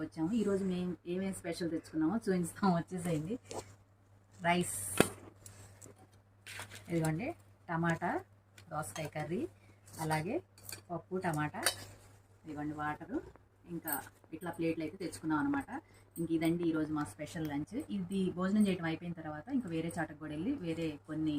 వచ్చాము. ఈరోజు మేము ఏమేమి స్పెషల్ తెచ్చుకున్నామో చూపిస్తాము, వచ్చేసేయండి. రైస్, ఇదిగోండి టమాటా దోసకాయ కర్రీ, అలాగే పప్పు టమాటా, ఇదిగోండి వాటరు, ఇంకా ఇట్లా ప్లేట్లు అయితే తెచ్చుకున్నాం అనమాట. ఇంక ఇదండి ఈరోజు మా స్పెషల్ లంచ్. ఇది భోజనం చేయడం అయిపోయిన తర్వాత ఇంకా వేరే చాటకు కూడా వెళ్ళి వేరే కొన్ని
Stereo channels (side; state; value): both; identical; correlation 1.00